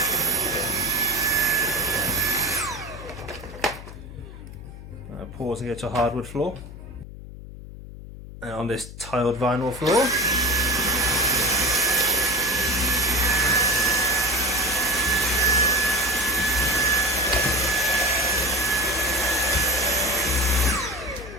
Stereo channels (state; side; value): noise; left; hum, 14 dB below the sound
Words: Pausing it to a hardwood floor. And on this tiled vinyl floor.